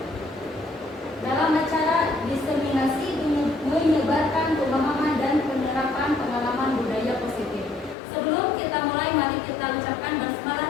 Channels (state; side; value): drops out; right; at 8.0 s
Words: dalam acara diseminasi menyebarkan pemahaman dan penerapan pengalaman budaya positif. Sebelum kita mulai, mari kita ucapkan basmalah